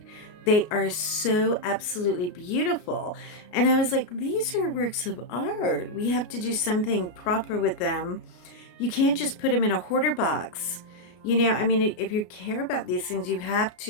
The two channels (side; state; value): right; late; 33 ms